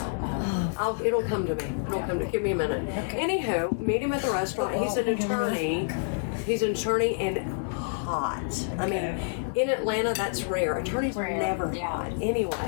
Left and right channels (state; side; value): silent; right; digital silence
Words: It'll come to me. It'll come to me. Give me a minute. Anywho, meet him at the restaurant. He's an attorney. He's an attorney and hot. I mean, in Atlanta, that's rare. Attorneys are Rare, never yeah. hot.